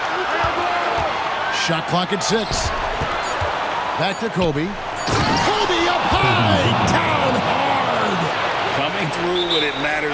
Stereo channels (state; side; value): identical; both; correlation 1.00